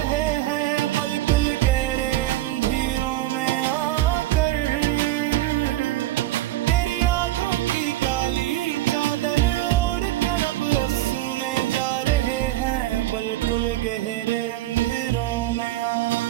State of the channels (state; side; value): quieter; left; 15.2 dB